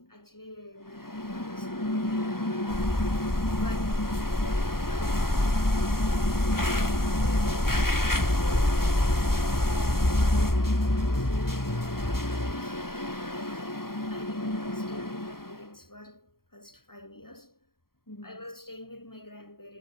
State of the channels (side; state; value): right; late; 0.93 ms